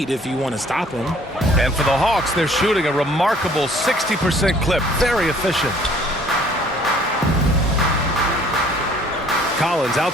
if you want to stop him. And for the Hawks, they're shooting a remarkable 60% clip. Very efficient. Collins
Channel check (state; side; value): normal; both; correlation 0.56